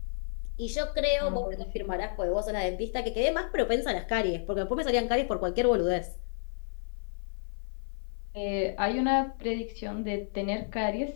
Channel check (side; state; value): right; silent; 57 dB below the other